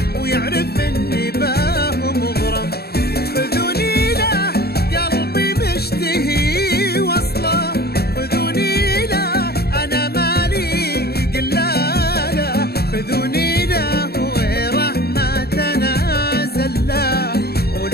ويعرف اني باه مغرم، خذوني له قلبي مشتهي وصله، خذوني له انا مالي قلاله، خذوني له غيره ما تنازل له،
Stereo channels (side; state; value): right; late; 0.46 ms